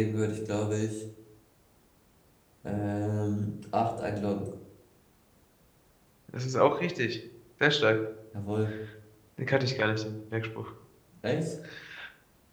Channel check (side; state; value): both; identical; correlation 1.00